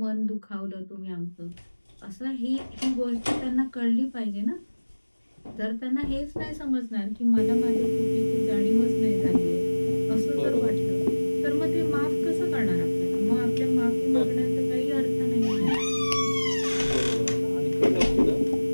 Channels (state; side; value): inverted; both; correlation -1.00